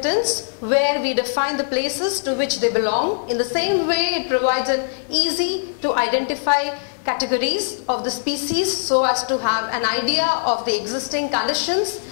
where we define the places to which they belong. In the same way, it provides an easy to identify categories of the species so as to have an idea of the existing conditions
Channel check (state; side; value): silent; right; 65 dB below the other